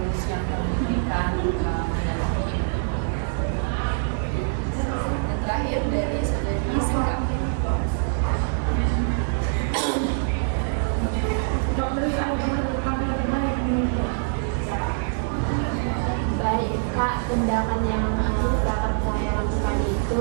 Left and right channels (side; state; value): left; silent; digital silence